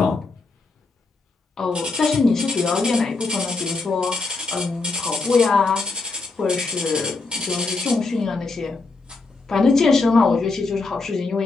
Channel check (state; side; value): quieter; right; 3.8 dB